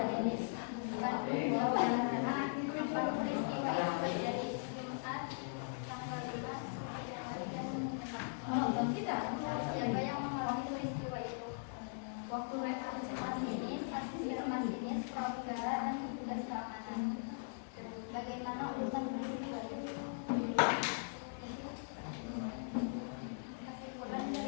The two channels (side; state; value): right; silent; 51 dB below the other